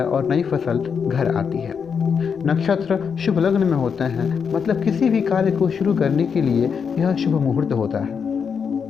और नई फसल घर आती है। नक्षत्र शुभ लग्न में होते हैं, मतलब किसी भी कार्य को शुरू करने के लिए यह शुभ मुहूर्त होता है।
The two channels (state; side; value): quieter; right; 6.5 dB